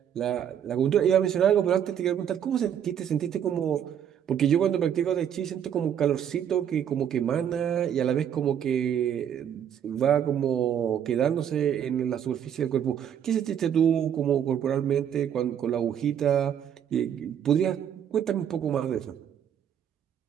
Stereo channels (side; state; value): left; quieter; 9.1 dB